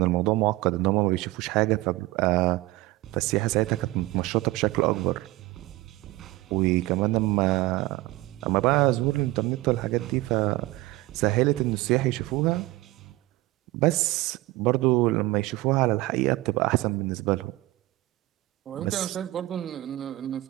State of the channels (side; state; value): left; quieter; 19.2 dB